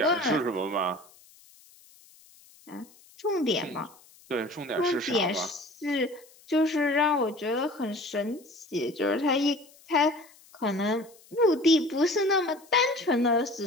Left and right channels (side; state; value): left; noise; hiss, 26 dB below the sound